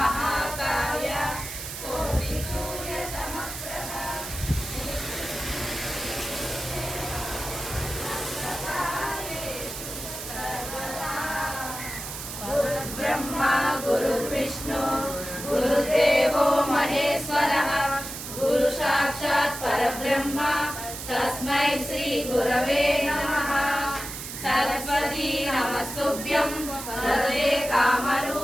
कोटिसूर्यसमप्रभा गुरुर्ब्रह्मा गुरुर्विष्णु गुरुदेवो महेश्वरः गुरु साक्षात् परब्रह्म तस्मै श्री गुरवे नमः। सरस्वती नमस्तुभ्यं वरदे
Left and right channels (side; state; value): right; noise; hiss, 8 dB below the sound